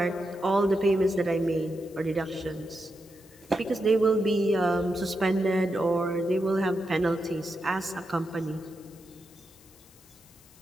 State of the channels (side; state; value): left; noise; hiss, 26 dB below the sound